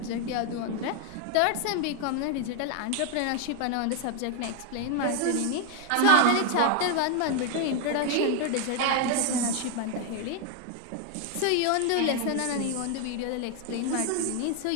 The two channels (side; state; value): both; different; correlation 0.00